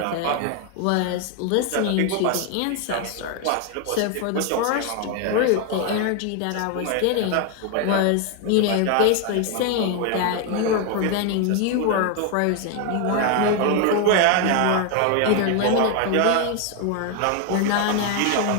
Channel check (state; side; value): different; both; correlation 0.01